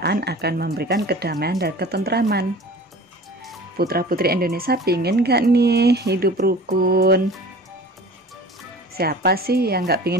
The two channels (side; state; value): both; normal; correlation 0.42